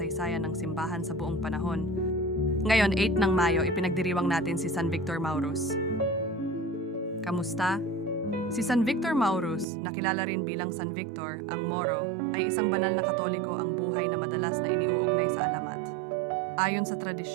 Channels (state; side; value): drops out; left; at 9.7 s